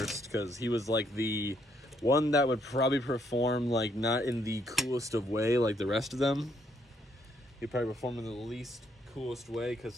because he was like the one that would probably perform like not in the coolest of way like the rest of them. He'd probably perform in the least coolest way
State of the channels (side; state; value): both; normal; correlation 0.71